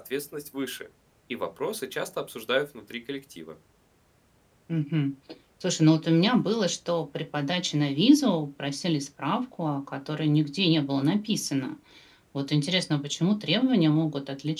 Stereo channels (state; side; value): identical; both; correlation 1.00